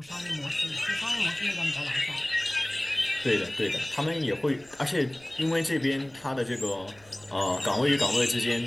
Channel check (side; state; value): right; noise; rumble, 28 dB below the sound